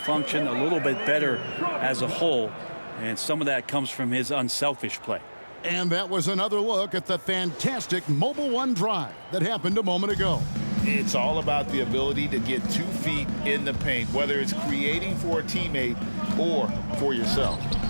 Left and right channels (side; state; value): both; inverted; correlation -1.00